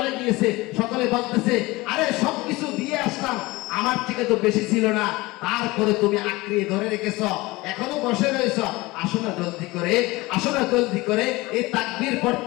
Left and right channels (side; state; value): right; quieter; 21.4 dB